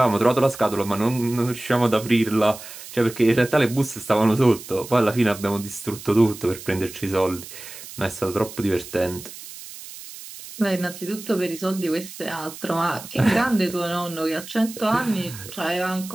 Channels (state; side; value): noise; right; hiss, 14 dB below the sound